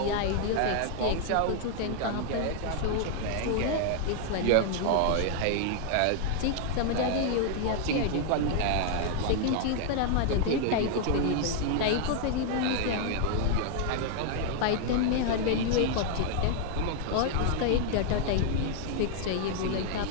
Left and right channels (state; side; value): different; both; correlation 0.00